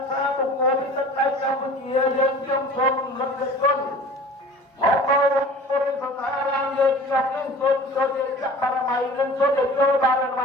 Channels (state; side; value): normal; both; correlation 0.43